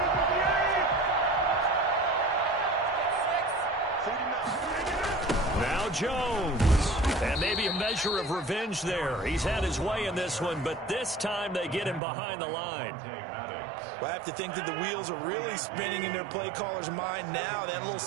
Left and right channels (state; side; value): drops out; left; at 12.0 s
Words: Now Jones. And maybe a measure of revenge there. He's had his way in this one, but this time they get him behind the line. Well, I have to think that the wheels are really spinning in their play caller's mind now. That little